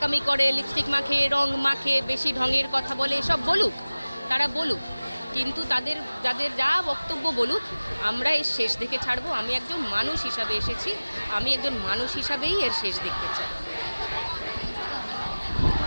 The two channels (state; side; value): inverted; both; correlation -1.00